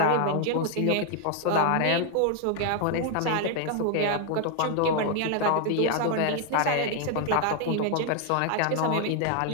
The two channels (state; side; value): different; both; correlation 0.00